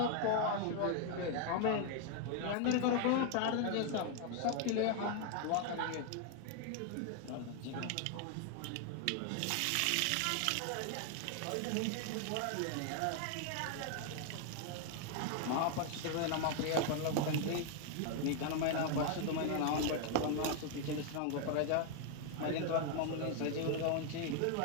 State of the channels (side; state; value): both; different; correlation 0.00